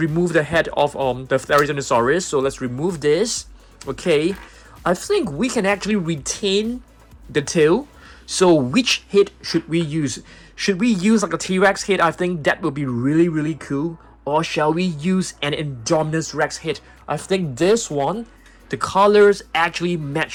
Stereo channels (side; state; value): both; identical; correlation 1.00